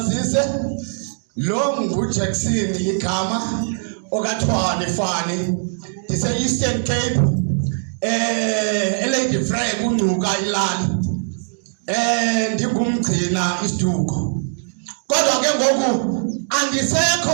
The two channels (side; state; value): left; silent; digital silence